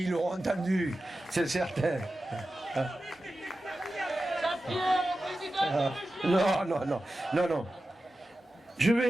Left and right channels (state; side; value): normal; both; correlation 0.93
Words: ils l'auront entendu, c'est certain. Non. Je